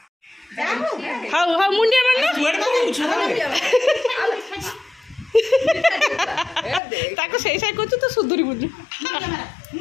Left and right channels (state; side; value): drops out; right; at 6.8 s